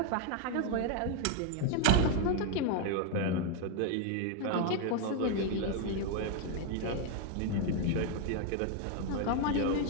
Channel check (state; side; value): different; both; correlation 0.00